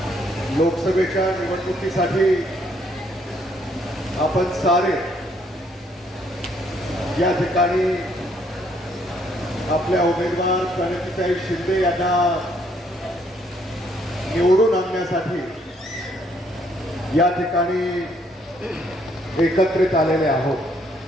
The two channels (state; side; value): normal; both; correlation 0.68